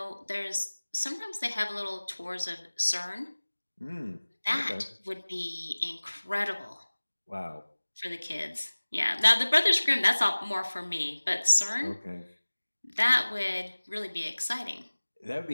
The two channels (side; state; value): both; inverted; correlation -1.00